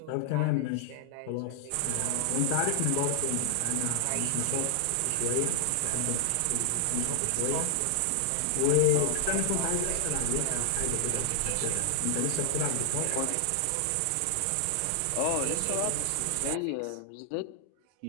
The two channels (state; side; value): different; both; correlation 0.00